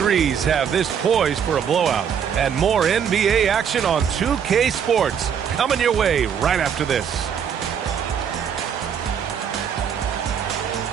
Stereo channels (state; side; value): quieter; left; 7.8 dB